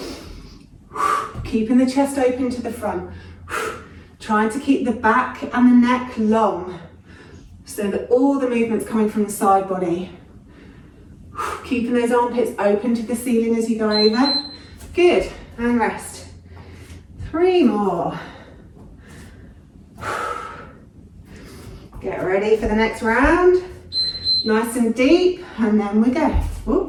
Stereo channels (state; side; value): identical; both; correlation 1.00